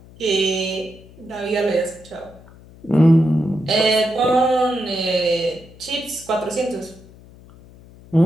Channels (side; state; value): left; noise; hum, 22 dB below the sound